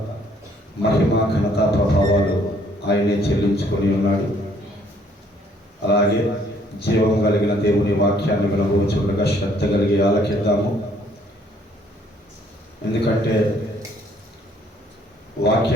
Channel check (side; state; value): both; normal; correlation 0.64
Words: మహిమ ఘనత ప్రభావాలు ఆయనే చెల్లించుకొని ఉన్నాడు. అలాగే జీవం కలిగిన దేవుని వాక్యాన్ని వినబోచుండగా శ్రద్ధ కలిగి ఆలకిద్దాము. ఎందుకంటే